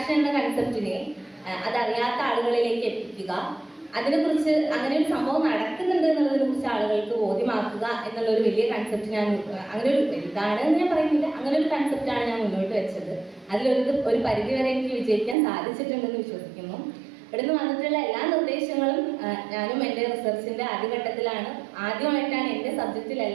എന്ന കൺസെപ്റ്റിനെ അതറിയാത്ത ആളുകളിലേക്ക് എത്തിക്കുക, അതിനെക്കുറിച്ച് അങ്ങനെ ഒരു സംഭവം നടക്കുന്നുണ്ട് എന്നുള്ളതിനെ കുറിച്ച് ആളുകൾക്ക് ബോധ്യമാക്കുക എന്നുള്ളൊരു വലിയ കൺസെപ്റ്റ് ഞാൻ അങ്ങനെ ഒരു ഇതാണെന്ന് ഞാൻ പറയുന്നില്ല, അങ്ങനെ ഒരു കൺസെപ്റ്റാണ് ഞാൻ മുന്നോട്ട് വെച്ചത്. അതിലൊരു പരിധിവരെ എനിക്ക് വിജയിക്കാൻ സാധിച്ചിട്ടുണ്ടെന്ന് വിശ്വസിക്കുന്നു. ഇവിടുന്ന് വന്നിട്ടുള്ള എല്ലാ നിർദ്ദേശങ്ങളും ഞാനും എൻ്റെ റിസർച്ചിൻ്റെ ആദ്യഘട്ടത്തിലാണ്, ആദ്യമായിട്ടാണ് എൻ്റെ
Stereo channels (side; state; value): left; drops out; at 15.4 s